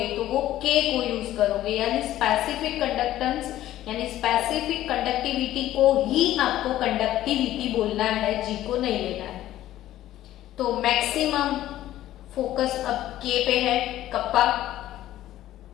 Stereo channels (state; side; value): quieter; right; 13.8 dB